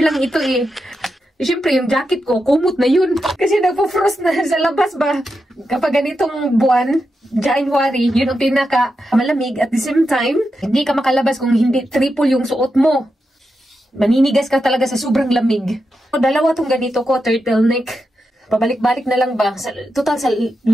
lang ito eh. Siyempre yung jacket ko, kumot na yun. Kasi nagpo-frost na sa labas ba. Kapag ganitong buwan, January, yun ang pinaka malamig. At the same time, hindi ka makalabas kung hindi triple yung suot mo. Maninigas ka talaga sa sobrang lamig. Dalawa tong ganito ko, turtleneck. Pabalik-balik na lang ba? Total sa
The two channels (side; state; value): both; normal; correlation 0.87